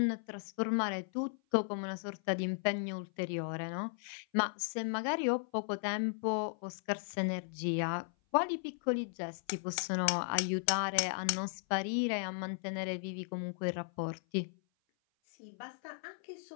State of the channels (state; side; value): silent; right; 54 dB below the other